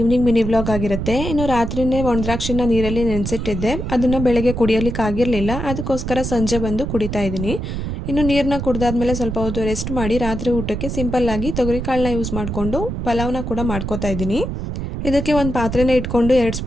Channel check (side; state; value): right; noise; rumble, 4 dB below the sound